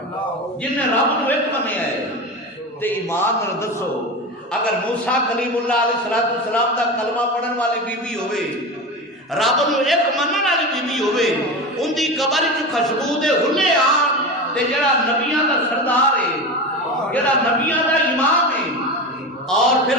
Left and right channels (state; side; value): normal; both; correlation 0.24